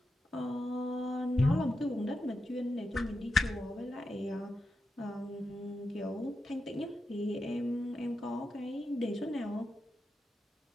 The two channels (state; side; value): normal; both; correlation 0.88